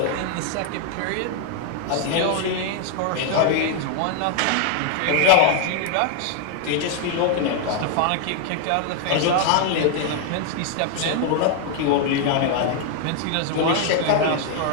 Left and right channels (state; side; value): different; both; correlation 0.00